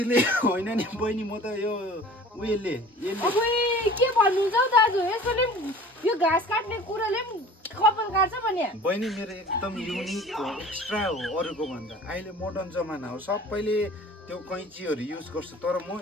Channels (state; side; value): normal; both; correlation 0.45